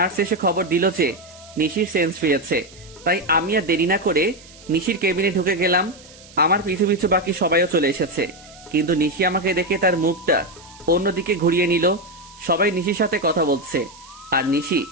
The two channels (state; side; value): noise; right; hiss, 22 dB below the sound